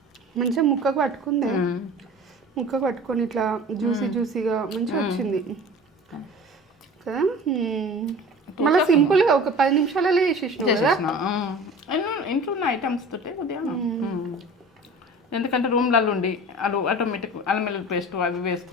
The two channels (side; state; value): both; normal; correlation 0.40